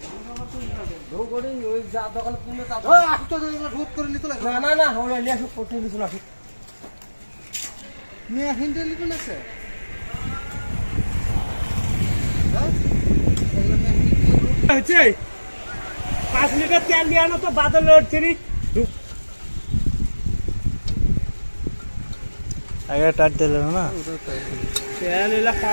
दो गोड़ी ওই যা দোকান কিনে তা ও আটো এগুলো রোদ করে নিতে লাগে না না আমরা নিয়ে আসব করতে দিছ না নিয়ে হিন্ডে লিখো না স্যার হচ্ছে 5 লিটার তেল দিয়ে আনো তো বাদল লড়ছিনি আগে টাট দিলে না তেল এলা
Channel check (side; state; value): both; inverted; correlation -1.00